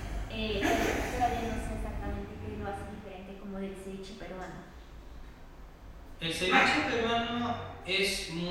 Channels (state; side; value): identical; both; correlation 1.00